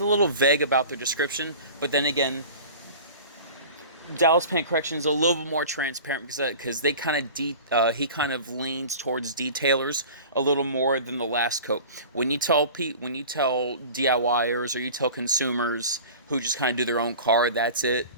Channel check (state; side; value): inverted; both; correlation -0.39